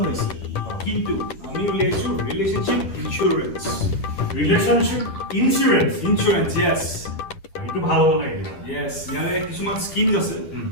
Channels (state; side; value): late; right; 10 ms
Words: হৈছে কিন্তু আমি উলিয়াইছোঁ ৰিলেশ্যনশ্বিপ ইঞ্চুৰেঞ্চ ইঞ্চুৰেঞ্চ য়েছ এইটো ভাল হ'ব লাগে য়েছ ইয়াৰে কিছুমান স্কিমছ আছে